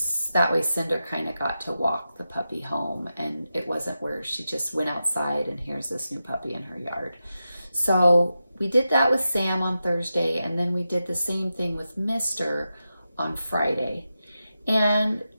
that way Cinder kind of got to walk the puppy home, and it wasn't where she just went outside and here's this new puppy in her yard. So we did that with Sam on Thursday, and then we did the same thing with Mr. on Friday. And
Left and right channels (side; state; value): both; inverted; correlation -0.90